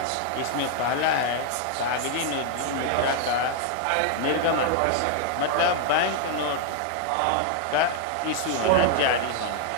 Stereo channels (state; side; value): different; both; correlation 0.00